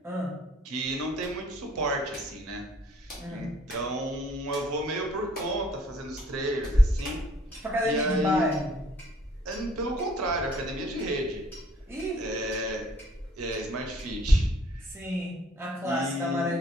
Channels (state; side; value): normal; both; correlation 0.59